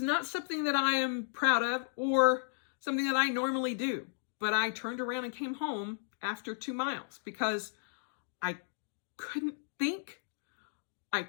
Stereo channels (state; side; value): silent; right; digital silence